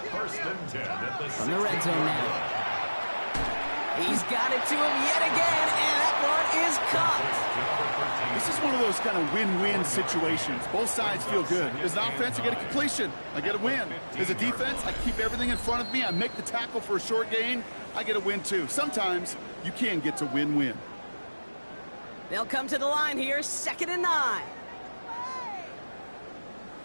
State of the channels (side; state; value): both; inverted; correlation -1.00